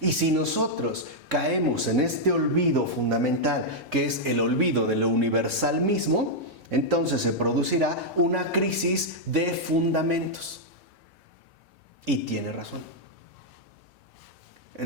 si nosotros caemos en este olvido fundamental, que es el olvido de lo universal mismo, entonces se producirá una crisis de fundamentos. Y tiene razón.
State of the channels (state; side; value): normal; both; correlation -0.04